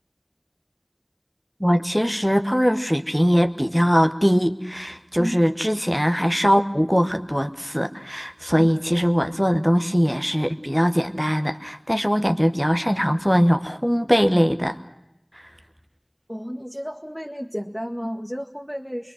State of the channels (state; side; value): identical; both; correlation 1.00